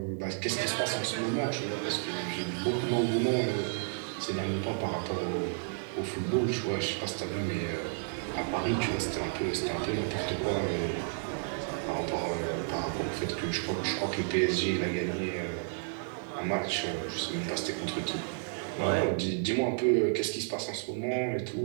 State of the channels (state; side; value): silent; left; digital silence